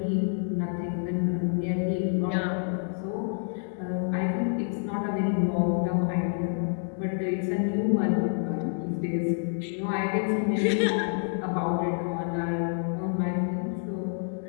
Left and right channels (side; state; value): right; silent; 59 dB below the other